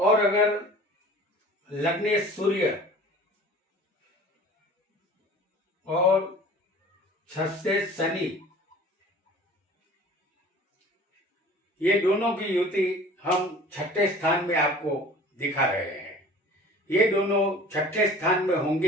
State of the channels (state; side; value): normal; both; correlation 0.45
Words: अगर लग्नेश सूर्य और छठेश शनि, ये दोनों की युति हम छठे स्थान में आपको दिखा रहे हैं। ये दोनों छठे स्थान में